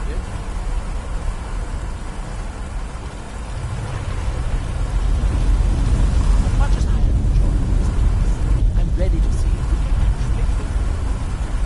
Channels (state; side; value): identical; both; correlation 1.00